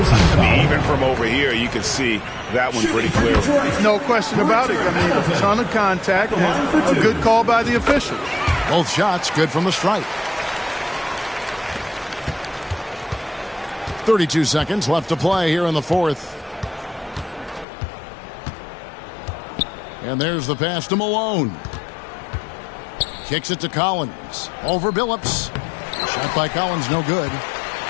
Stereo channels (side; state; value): right; drops out; at 17.7 s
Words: mean, even from over here, you can see that one pretty clearly. No question about it. I mean, a ton of contact and a good call by the official. Both shots good from the stripe. 32 seconds left to play here in the fourth. And there's the pass to Malone. Kicks it to Collins. Over Billups. Shot by Collins, no good.